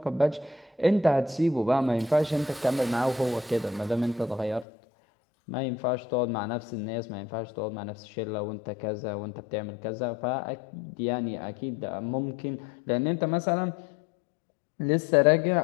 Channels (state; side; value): drops out; right; at 4.7 s